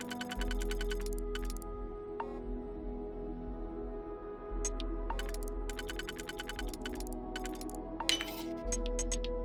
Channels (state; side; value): identical; both; correlation 1.00